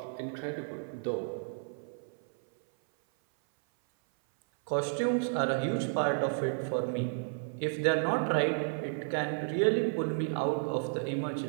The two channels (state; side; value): silent; left; 56 dB below the other